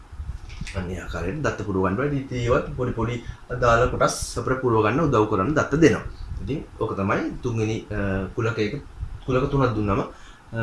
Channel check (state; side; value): identical; both; correlation 1.00